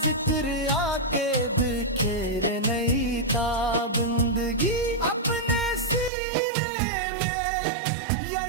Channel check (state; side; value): drops out; left; at 6.1 s